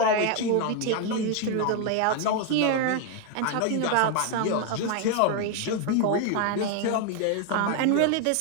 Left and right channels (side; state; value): both; different; correlation 0.01